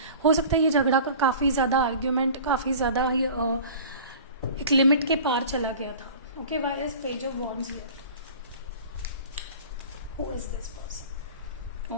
हो सकता है ये झगड़ा काफ़ी ज़्यादा, आर्ग्यूमेंट काफ़ी ज़्यादा ही एक लिमिट के पार चला गया था. Okay, why is page of wands here? Who is this person?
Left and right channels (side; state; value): both; inverted; correlation -0.40